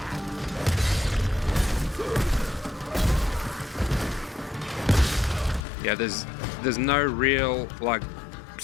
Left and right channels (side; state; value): right; drops out; at 5.6 s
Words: Yeah, there's no real like